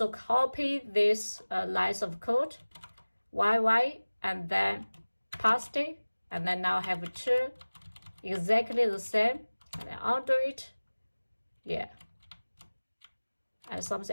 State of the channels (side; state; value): both; inverted; correlation -1.00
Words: copy this lines of code, YY, and then paste it, and then now have two exactly the same, and then undo it, yeah. And